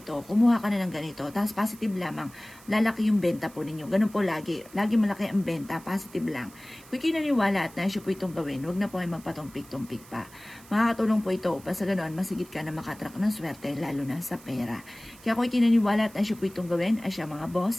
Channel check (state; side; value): noise; right; hiss, 22 dB below the sound